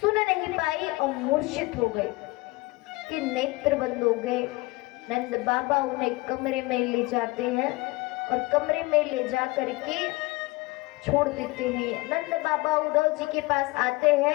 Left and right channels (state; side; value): quieter; right; 22.7 dB